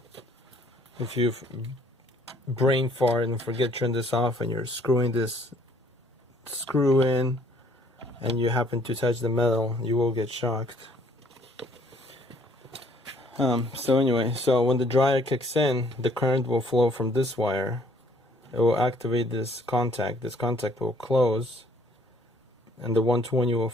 If you've brain fart and forget to turn this off and you're screwing this screw in and you happen to touch the metal, you will get shocked. So anyway, so when the dryer kicks in, the current will flow from this wire. It will activate this contact. This contact will close, and the 120 will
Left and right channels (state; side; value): normal; both; correlation 0.61